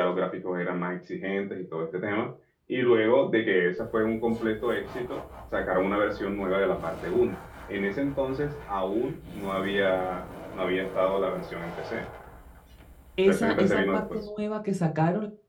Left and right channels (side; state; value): both; identical; correlation 1.00